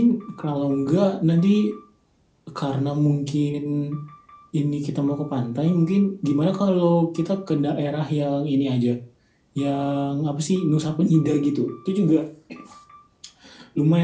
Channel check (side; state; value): both; identical; correlation 1.00